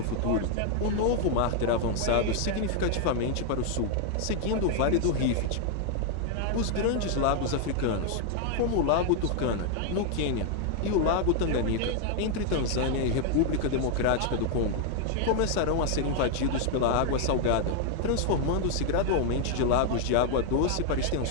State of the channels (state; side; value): different; both; correlation 0.00